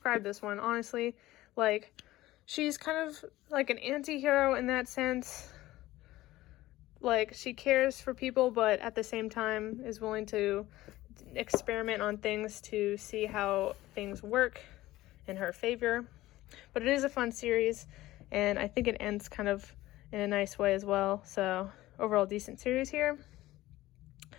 this one, honestly. She's kind of like an anti-hero in that sense. She cares for people, but at the same time is willing to experiment on things to see how things work in her favor. But it is a fun series, and I think it ends kind of in a nice way as well. So overall decent series here.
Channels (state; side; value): quieter; right; 16.7 dB